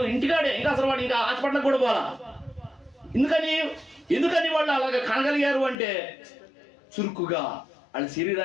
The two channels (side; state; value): right; drops out; at 5.8 s